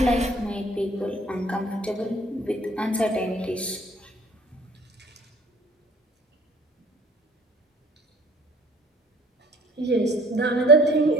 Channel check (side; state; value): both; normal; correlation 0.54